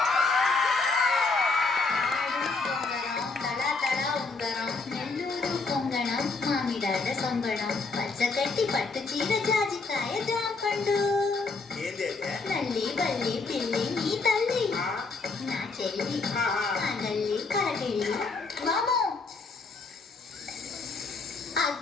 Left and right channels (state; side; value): quieter; right; 4.0 dB